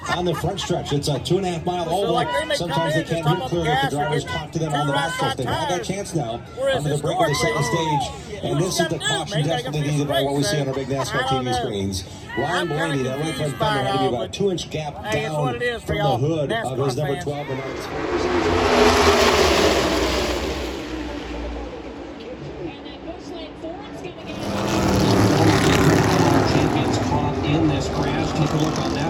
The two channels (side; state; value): both; identical; correlation 1.00